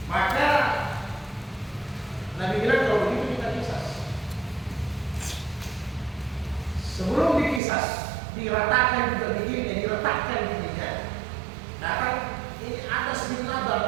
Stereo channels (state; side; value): drops out; left; at 7.6 s